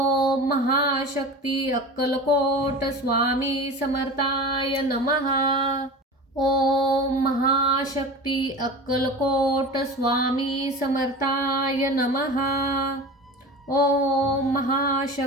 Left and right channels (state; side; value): normal; both; correlation 0.33